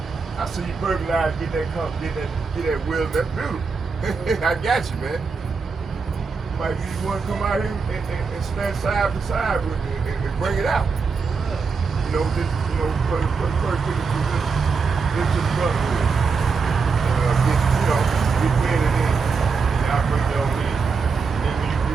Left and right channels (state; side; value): quieter; left; 5.0 dB